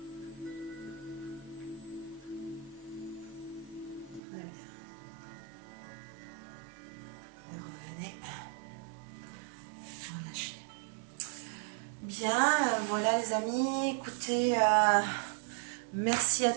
Très bien. Et revenez. Relâchez. Bien, voilà les amis, écoutez, merci à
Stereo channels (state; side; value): drops out; left; at 4.2 s